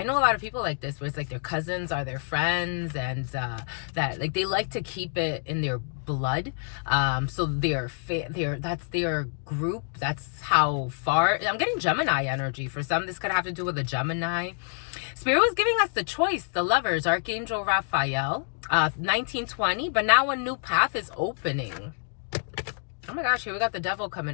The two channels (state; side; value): silent; right; 59 dB below the other